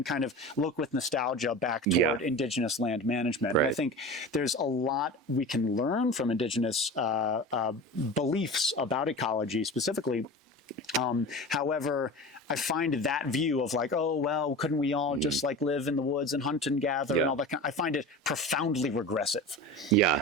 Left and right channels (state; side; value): normal; both; correlation 0.32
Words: kind of look with nostalgia back toward indigenous land management. And I think there's a lot we can learn from indigenous beliefs about ecology specifically. However, I find that view of like, oh, well, couldn't we all just like live in the woods and hunt and gather and all that kind, I find it profoundly regressive.